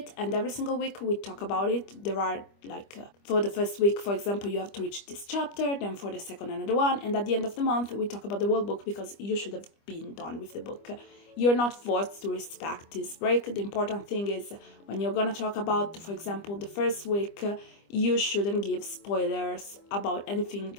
and every single week we talk about it. There are for the first week, for example, you have to reach this chapter, then for the second another one, and at the end of the month we talk about the whole book because you should have been done with the book. You're not forced to respect this break. The important thing is when you're gonna talk about, for example, the first week, you shouldn't give spoilers about anything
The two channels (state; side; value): late; right; 25 ms